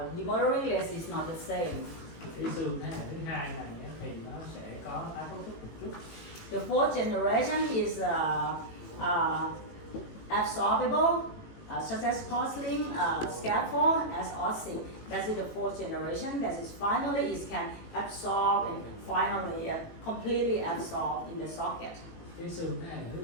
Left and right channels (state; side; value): late; right; 18 ms